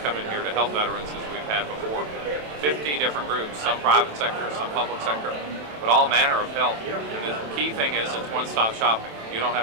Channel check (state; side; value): late; left; 27 ms